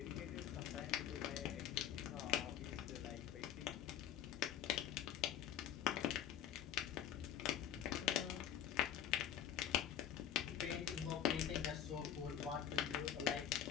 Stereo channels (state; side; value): quieter; right; 10.3 dB